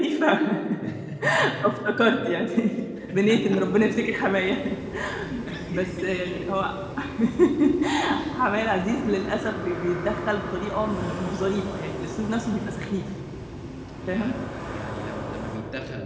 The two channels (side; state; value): both; identical; correlation 1.00